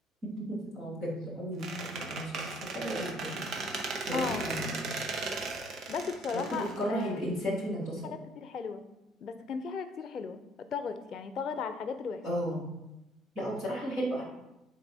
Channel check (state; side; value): normal; both; correlation 0.61